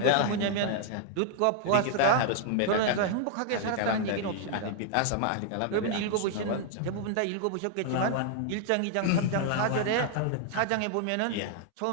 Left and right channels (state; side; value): different; both; correlation 0.00